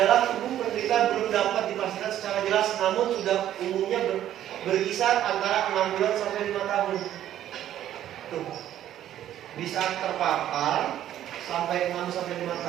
tubuh penderita belum dapat dipastikan secara jelas, namun sudah umumnya berkisar antara 6 bulan sampai 5 tahun. Tuh. Di saat terpapar sampai 6 sampai 5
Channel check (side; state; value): left; quieter; 11.8 dB